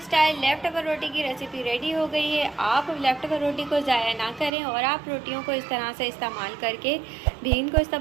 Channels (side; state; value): left; drops out; at 4.5 s